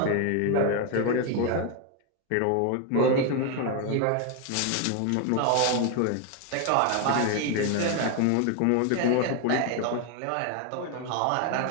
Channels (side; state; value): both; different; correlation 0.01